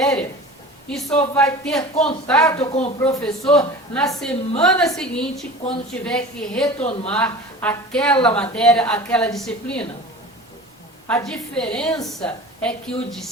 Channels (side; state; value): both; normal; correlation 0.37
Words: E só vai ter contato com o professor na semana seguinte, quando tiver que retomar aquela matéria, aquela disciplina. A diferença é que o